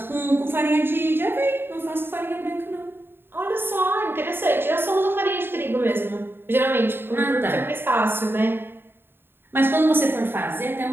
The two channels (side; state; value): left; late; 0.10 ms